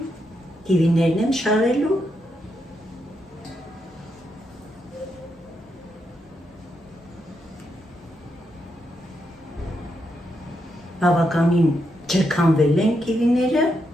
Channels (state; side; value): normal; both; correlation 0.81